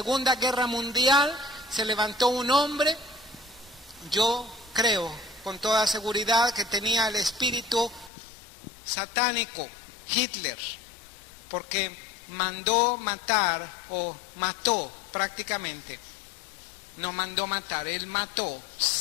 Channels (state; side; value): drops out; right; at 8.1 s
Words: Guerra Mundial se levantó un hombre, yo creo con toda seguridad que tenía el espíritu satánico, Hitler, porque mandó matar, o mató prácticamente, no mandó matar, él mató